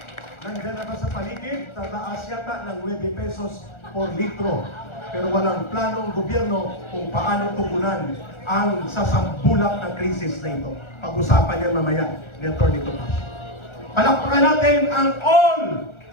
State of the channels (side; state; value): right; late; 1.4 ms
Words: nandiyan na ba sa paligid? Tataas yata ng 9 pesos por litro. Pero walang plano ang gobyerno kung paano tugunan ang sasambulak na krisis na ito. Pag-usapan yan mamaya ni Atty. Tupacio. Palakpakan natin ang All